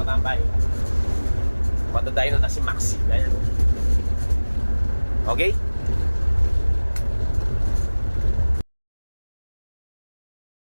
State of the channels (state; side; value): inverted; both; correlation -1.00